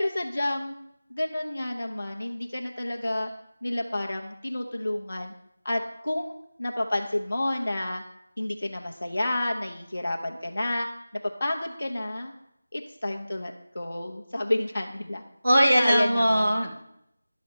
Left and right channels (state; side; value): inverted; both; correlation -0.96